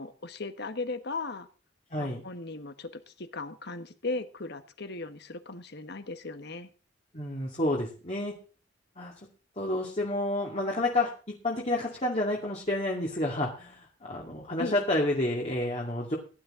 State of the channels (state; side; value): normal; both; correlation 0.38